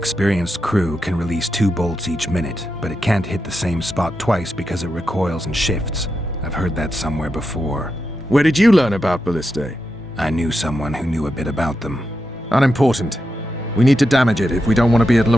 crew can release 2 bolts each minute, but it can't hit the same spot twice because it recoils and shifts. I've heard that somewhere before. Where did you learn about ballistae? I knew someone who knew a bit about them. Unimportant. We need to damage it if we don't want to be at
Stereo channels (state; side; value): normal; both; correlation 0.87